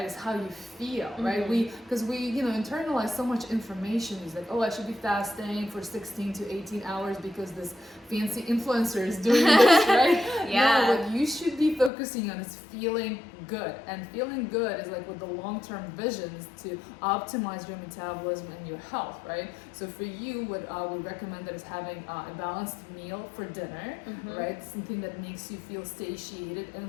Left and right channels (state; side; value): drops out; right; at 11.9 s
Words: It's how you feel, right? Because we internalize so much information. It's like, oh, I should be fasting for 16 to 18 hours because this fancy influencer is doing this, right? Yeah. No, what you should be focusing on is feeling good, and feeling good is like with the long-term vision is to optimize your metabolism and your health, right? So for you, what we recommend is having a balanced meal for dinner, right? Something that makes you feel satiated